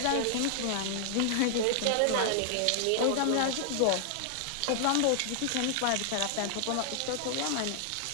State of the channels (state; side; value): different; both; correlation 0.00